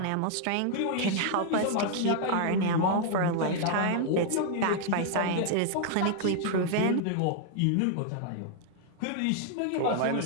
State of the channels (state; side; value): different; both; correlation 0.00